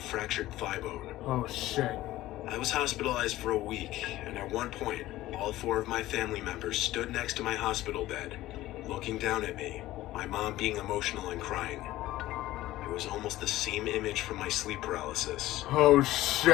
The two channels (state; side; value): quieter; right; 16.0 dB